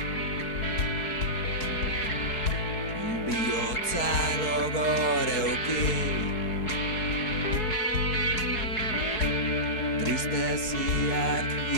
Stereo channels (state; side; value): late; right; 4.6 ms